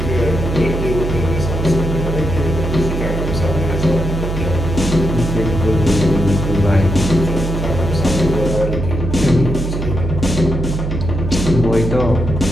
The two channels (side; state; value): right; noise; hum, 3 dB below the sound